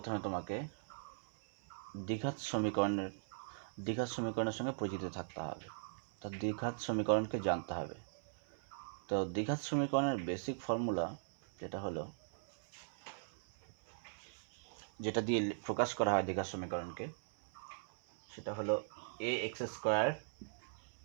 তোমাকে দ্বিঘাত সমীকরণের সঙ্গে পরিচিত থাকতে হবে। তো দ্বিঘাত সমীকরণকে জানতে হবে। তো দ্বিঘাত সমীকরণের বেসিক ফর্মুলা যেটা দিয়ে প্রকাশ করা হয় দ্বিঘাত সমীকরণকে, সেটা হলো a x square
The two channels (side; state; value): left; silent; 51 dB below the other